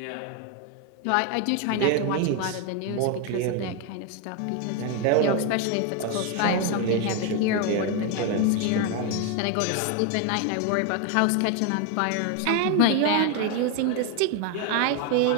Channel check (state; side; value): different; both; correlation 0.01